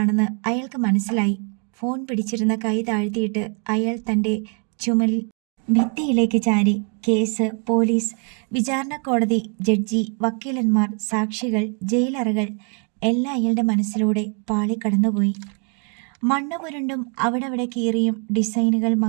അയാൾക്ക് മനസ്സിലായി. ഫോൺ പിടിച്ചിരുന്ന കൈ താഴ്ത്തിയിട്ട് അയാൾ തൻ്റെ ചുമലിൽ ഭിത്തിയിലേക്ക് ചാരി. കേസ്, പോലീസ്, വിചാരണ കോടതി, ജഡ്ജി, വക്കീലന്മാർ, സാക്ഷികൾ, ജയിലറകൾ എല്ലാം അയാളുടെ മനസ്സിലൂടെ പാളിക്കടന്നുപോയി. മണ്ണ് പുരണ്ടും അവിടെ കീറിയും ഡിസൈനുകൾ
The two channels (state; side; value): quieter; left; 38.7 dB